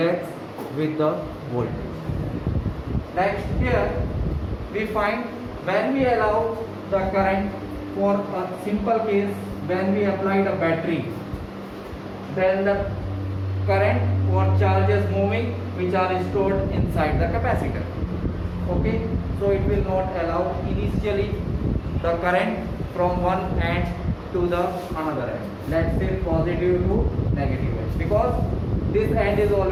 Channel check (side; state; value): both; identical; correlation 1.00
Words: with the voltage. Next here we find when we allow the current, for a simple case, when we applied a battery, then the current or charges moving which are stored inside the capacitor. Okay, so it will not allow initially the current from one end to the another end, let's say positive to negative end, because this end is